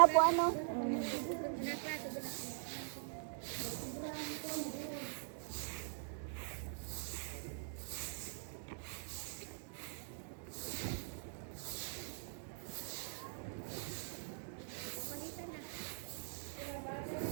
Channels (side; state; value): left; silent; digital silence